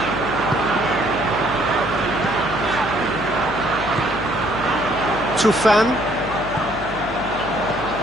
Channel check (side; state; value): left; noise; hum, 13 dB below the sound